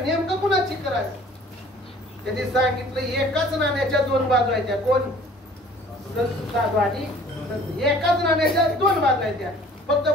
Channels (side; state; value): both; normal; correlation 0.51